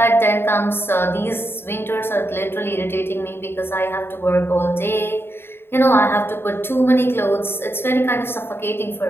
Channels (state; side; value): late; right; 0.11 ms